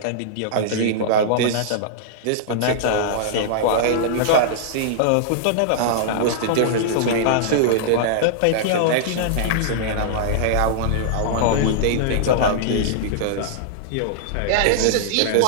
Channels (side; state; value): both; different; correlation -0.02